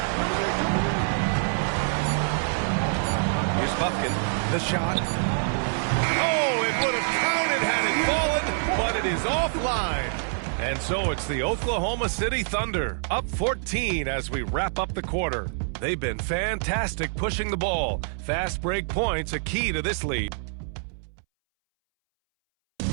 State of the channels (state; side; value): silent; left; 61 dB below the other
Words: Here's Bufkin. The shot. Oh, it would have counted had it fallen, but it is offline. And so it's the Oklahoma City Thunder, up 14 as we wrap up the quarter. They've been fantastic pushing the ball. Fast break points a key to this lead.